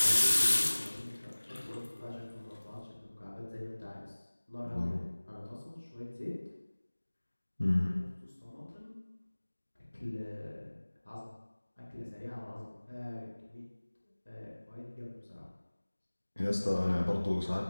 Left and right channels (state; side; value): inverted; both; correlation -1.00